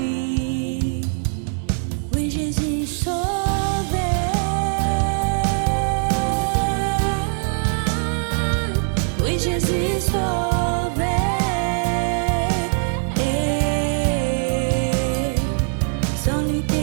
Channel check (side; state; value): left; silent; 65 dB below the other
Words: Oui, Jésus sauvé. Oui, Jésus sauvé. Sans lui